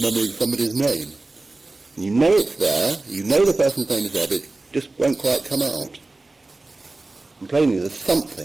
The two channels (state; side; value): quieter; left; 3.2 dB